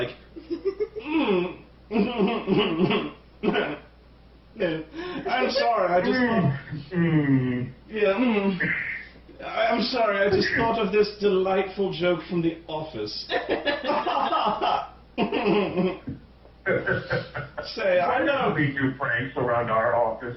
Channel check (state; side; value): identical; both; correlation 1.00